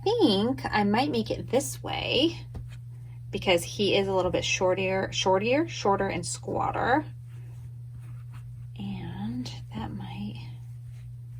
think I might make it this way because he is a little bit shorter and squatter, and that might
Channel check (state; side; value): identical; both; correlation 1.00